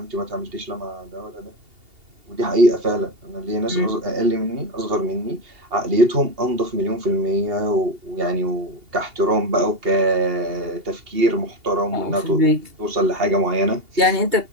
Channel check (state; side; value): late; left; 2.8 ms